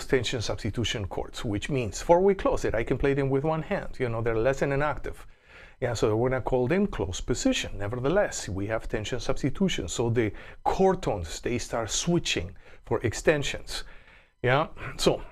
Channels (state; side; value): identical; both; correlation 1.00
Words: tension substitution chords, which means four-way close that I can play them with one hand. You know, they're less than an octave. Yeah, so we're gonna call them close position. Nevertheless, we have tension substitution, so the chord tones, they start switching for extensions. Yeah, so